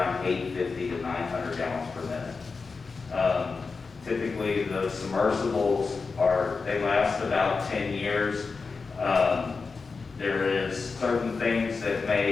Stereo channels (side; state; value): right; quieter; 4.5 dB